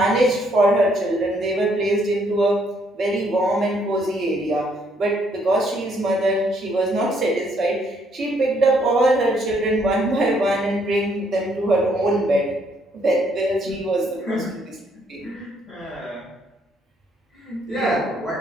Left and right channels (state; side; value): normal; both; correlation 0.69